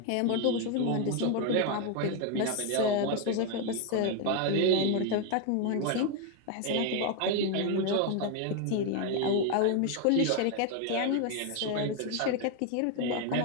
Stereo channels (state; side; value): different; both; correlation 0.01